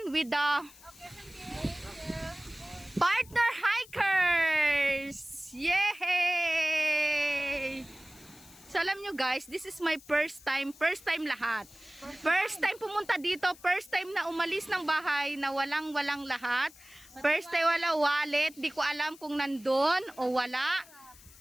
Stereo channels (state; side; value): noise; left; hiss, 22 dB below the sound